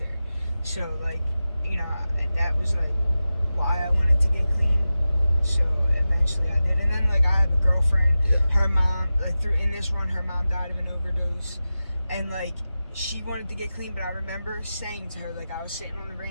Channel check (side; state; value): both; inverted; correlation -0.93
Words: So, like, you know, that was, like, why I wanted to get clean. So eventually I did. And then, like, I have a girlfriend. Yeah. Her mom, like, in this run, her mom died of an overdose. And, like, she wanted to get clean, but I remember saying to her, like, I was sitting on the